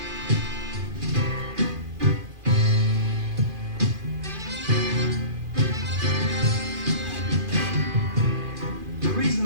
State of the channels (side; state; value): left; late; 2.4 ms